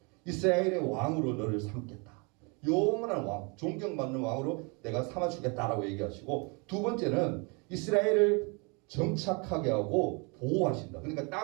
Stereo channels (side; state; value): left; quieter; 31.7 dB